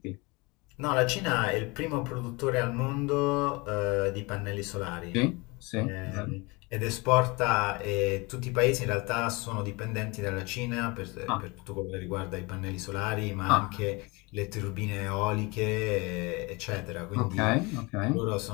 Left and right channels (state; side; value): quieter; right; 26.2 dB